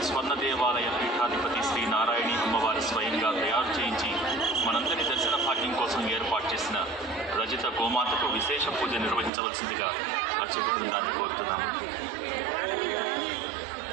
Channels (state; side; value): drops out; left; at 9.3 s